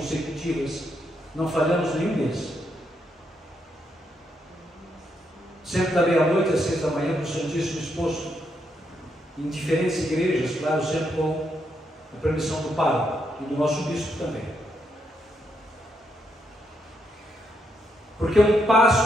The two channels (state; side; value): normal; both; correlation 0.79